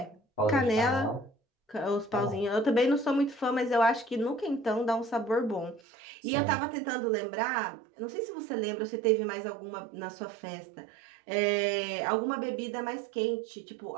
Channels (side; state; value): left; drops out; at 5.8 s